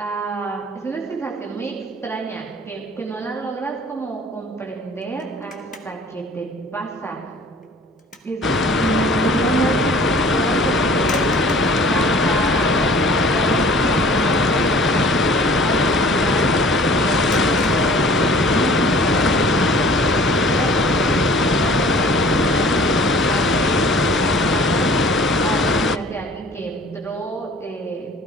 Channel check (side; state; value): both; normal; correlation 0.50